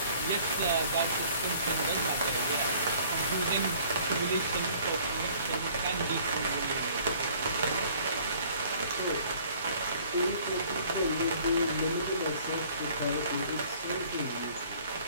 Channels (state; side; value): inverted; both; correlation -0.55